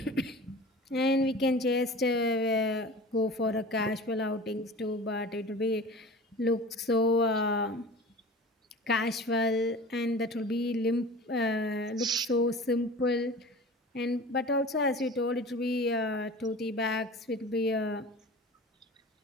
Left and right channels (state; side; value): normal; both; correlation 0.38